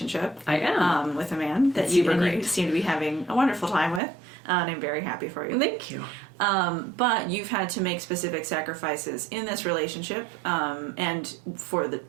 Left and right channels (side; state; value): left; drops out; at 4.0 s